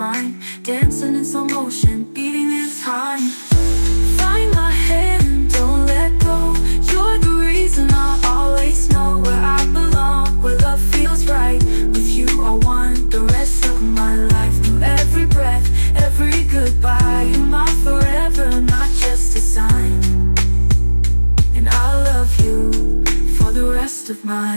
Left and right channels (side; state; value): both; inverted; correlation -1.00